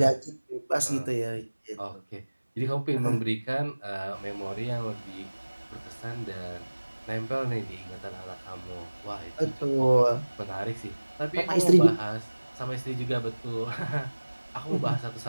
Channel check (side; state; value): both; inverted; correlation -1.00